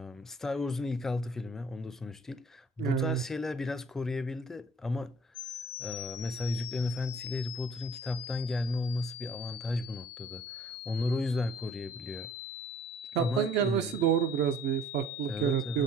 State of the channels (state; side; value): normal; both; correlation 0.55